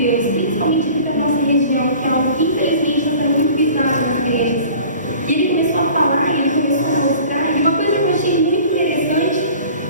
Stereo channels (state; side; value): inverted; both; correlation -0.45